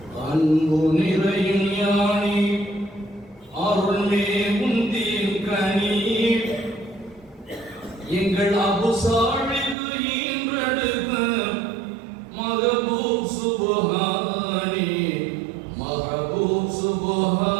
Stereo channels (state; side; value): drops out; left; at 9.8 s